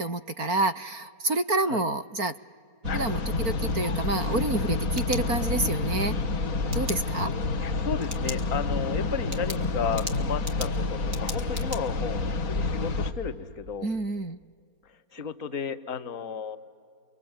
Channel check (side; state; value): left; late; 4.3 ms